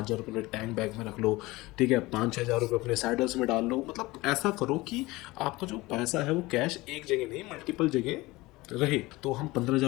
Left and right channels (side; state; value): right; quieter; 20.7 dB